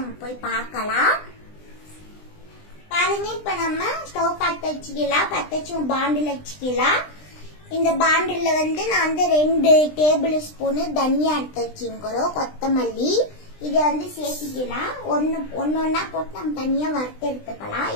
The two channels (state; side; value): late; right; 20 ms